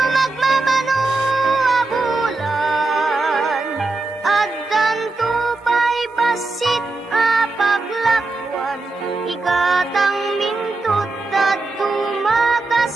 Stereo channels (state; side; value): quieter; left; 3.4 dB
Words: abulan. Addan tupay basit apaglakwan ikatang mintot at tumaka